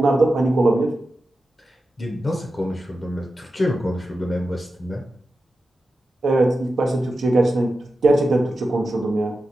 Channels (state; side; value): normal; both; correlation 0.92